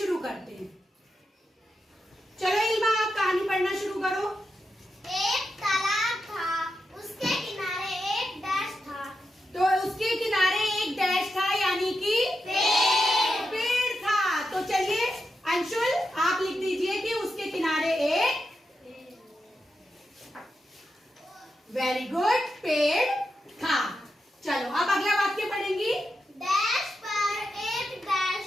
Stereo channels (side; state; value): both; normal; correlation 0.87